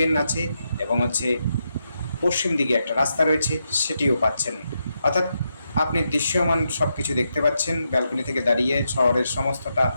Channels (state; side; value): inverted; both; correlation -0.83